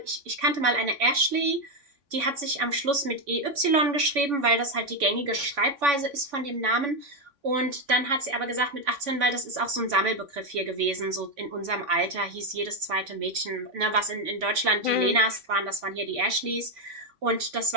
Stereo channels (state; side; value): late; left; 3.6 ms